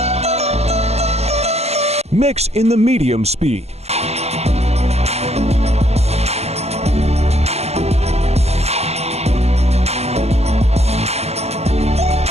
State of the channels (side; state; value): left; late; 0.30 ms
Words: Mix in the medium speed.